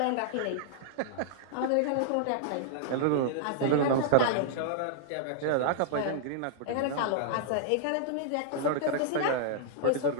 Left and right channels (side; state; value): both; different; correlation -0.01